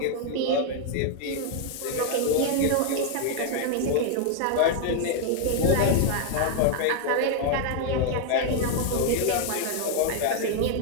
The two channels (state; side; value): different; both; correlation 0.00